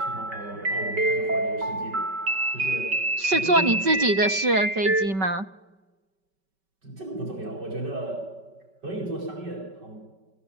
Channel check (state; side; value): late; left; 5.2 ms